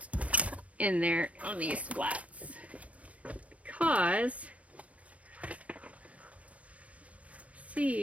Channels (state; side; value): late; left; 0.066 ms